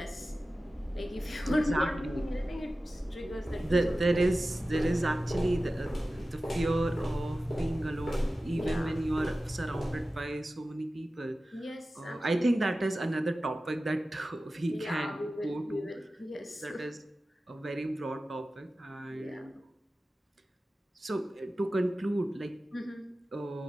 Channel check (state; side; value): normal; both; correlation 0.95